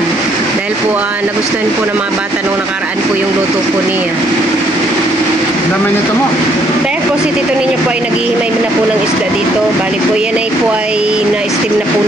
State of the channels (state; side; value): normal; both; correlation 0.68